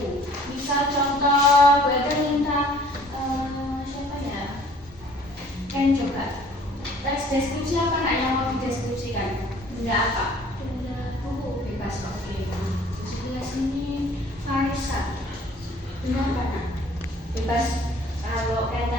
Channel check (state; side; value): normal; both; correlation 0.53